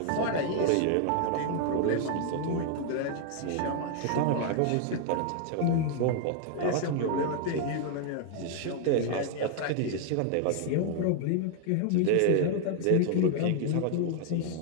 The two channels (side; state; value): both; different; correlation 0.00